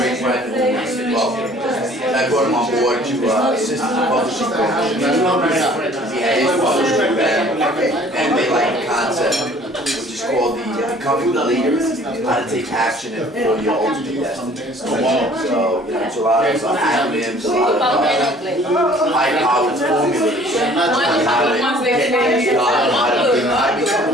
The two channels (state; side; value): normal; both; correlation 0.53